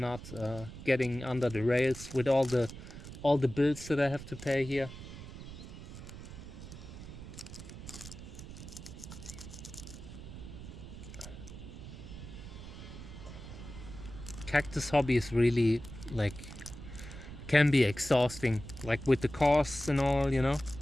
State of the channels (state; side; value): noise; right; rumble, 12 dB below the sound